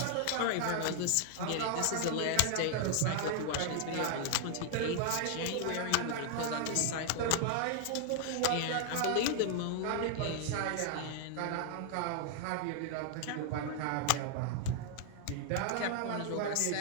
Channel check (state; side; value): different; both; correlation 0.00